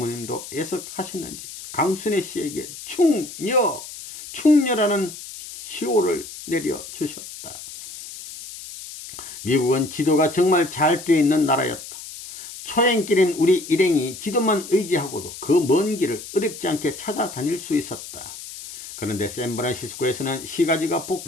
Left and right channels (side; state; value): left; noise; hiss, 12 dB below the sound